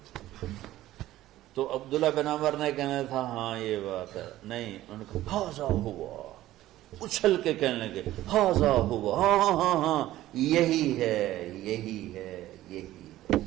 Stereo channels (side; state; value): left; quieter; 14.9 dB